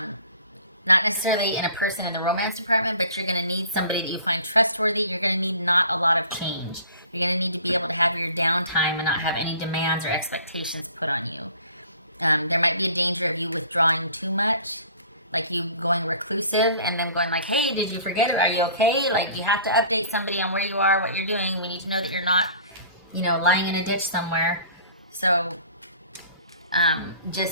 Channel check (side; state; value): both; inverted; correlation -0.48